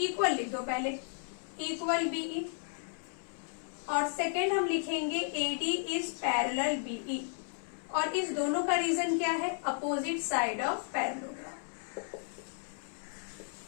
लिख दो पहले, इक्वल BE। और सेकेंड हम लिखेंगे AD इज पैरेलल BE। और इस दोनों का रीजन क्या है, opposite side of parallelogram.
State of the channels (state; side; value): silent; right; 55 dB below the other